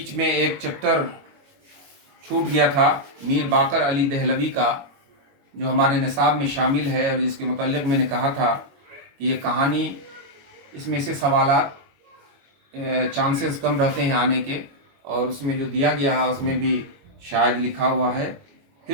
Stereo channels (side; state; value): left; late; 22 ms